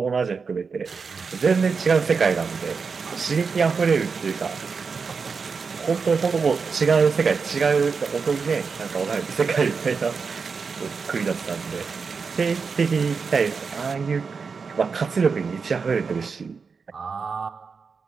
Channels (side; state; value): left; quieter; 5.2 dB